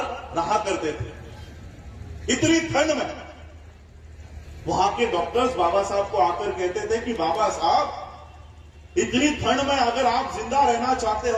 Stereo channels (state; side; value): identical; both; correlation 1.00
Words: रहा करते थे। इतनी ठंड में वहां के डॉक्टर्स बाबा साहब को आकर कहते थे कि बाबा साहब, इतनी ठंड में अगर आप जिंदा रहना चाहते